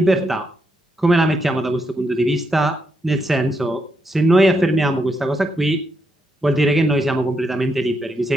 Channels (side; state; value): both; normal; correlation 0.80